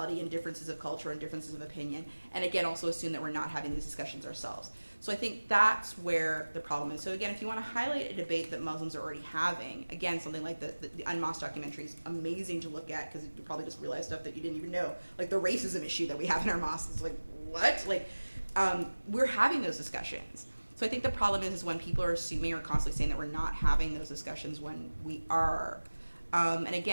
and differences of culture and differences of opinion, and again, also assume that we're not having these discussions ourselves. So I think that's where the problem is. So again, if you want to highlight a debate that Muslims are already having, again, something like the Unmasked documentary is amazing to look at, because you probably just realize stuff that you didn't even know. The racism issue that we have in our mosques is what? We're having those discussions. So I think the problem is when people are assuming or constantly saying that we're not having those discussions when we are. And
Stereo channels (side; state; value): both; inverted; correlation -1.00